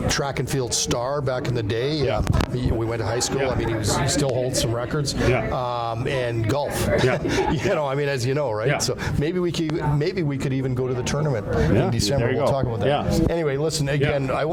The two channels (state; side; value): identical; both; correlation 1.00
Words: track and field star back in the day. Yeah. We went to high school. Yeah. I mean, he still holds some records. Yeah. And golf. Yeah. I mean, as you know, right? Yeah. So maybe we could even go to the tournament in December. There you We'll go. talk about that. Yeah. Anyway, listen again. I